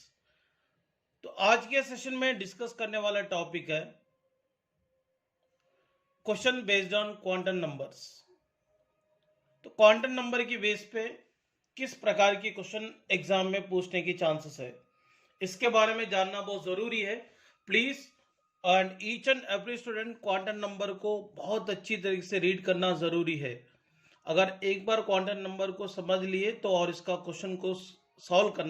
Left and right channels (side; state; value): both; identical; correlation 1.00